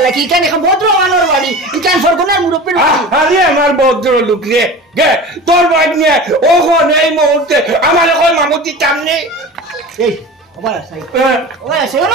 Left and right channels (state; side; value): normal; both; correlation 0.34